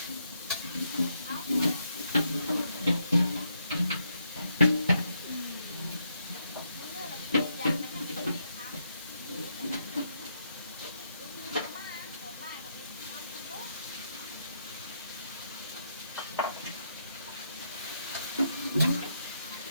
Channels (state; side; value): inverted; both; correlation -0.78